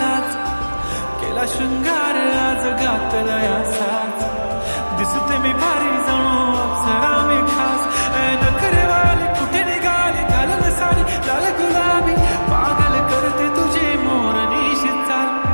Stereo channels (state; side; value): inverted; both; correlation -1.00